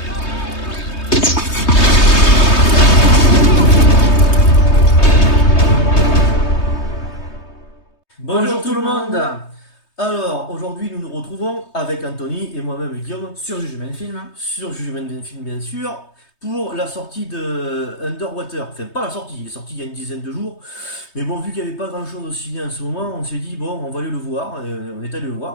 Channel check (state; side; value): late; right; 3.2 ms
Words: Bonjour tout le monde. Alors, aujourd'hui, nous nous retrouvons avec Anthony et moi-même Guillaume Sur Jugement Film. sur Jugement d'un film, bien sûr, pour la sortie de Underwater. Enfin, pas la sortie, il est sorti il y a une dizaine de jours. Mais bon, vu qu'il n'y avait pas grand-chose au ciné en ce moment, on s'est dit, bon, on va aller le voir. Et on est allé le